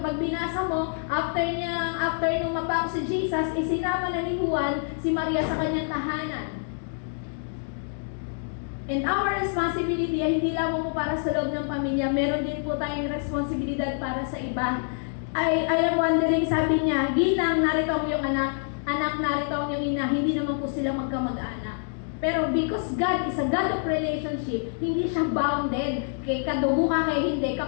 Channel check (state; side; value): silent; right; 61 dB below the other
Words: binasa mo, after nung mapako si Jesus, isinama na ni Juan si Maria sa kanyang tahanan. And our responsibility ay hindi lamang po para sa loob ng pamilya, meron din po tayong responsibilidad para sa iba. I am wondering, sabi niya, ginang narito ang iyong anak narito ang iyong ina, hindi naman po sila magkamag-anak. Pero because God is a God of relationship, hindi siya bounded. Kay kadugo ka, kay hindi.